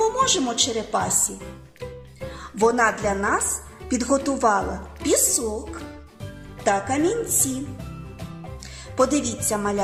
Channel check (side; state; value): both; identical; correlation 1.00